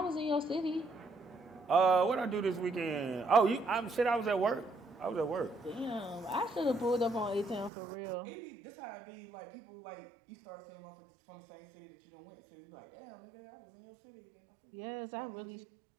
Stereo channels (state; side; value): drops out; left; at 7.7 s